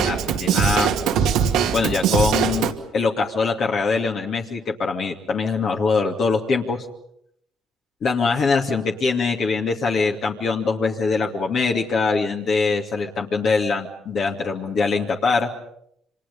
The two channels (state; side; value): normal; both; correlation 0.72